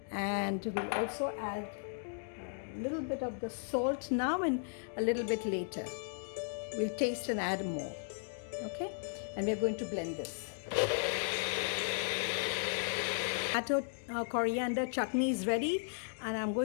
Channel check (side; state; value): right; silent; digital silence